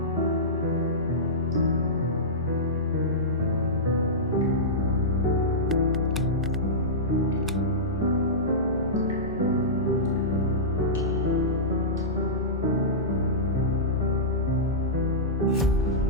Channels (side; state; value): both; normal; correlation -0.16